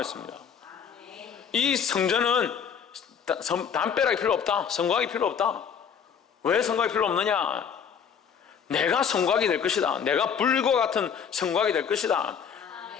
이 성전은 담벼락이 필요 없다. 성곽이 필요 없다. 왜 성곽이 필요 없느냐? 내가 성곽이 될 것이다. 내가 불과 같은 성곽이 될 것이다.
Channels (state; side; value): quieter; right; 7.3 dB